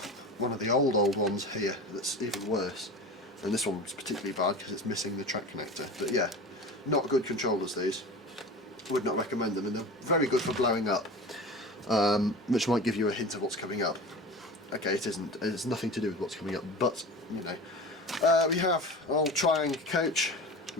one of the old ones here that's even worse. And this one's particularly bad because it's missing the track connector. But yeah, not good controllers these. Would not recommend them, and they're very good for blowing up, which might give you a hint of what's coming up. Okay, it isn't. It's nothing to do with what's coming up, but you know. We have an old Triang coach,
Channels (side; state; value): both; normal; correlation 0.33